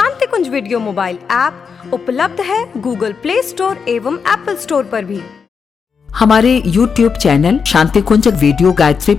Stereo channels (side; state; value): right; quieter; 5.9 dB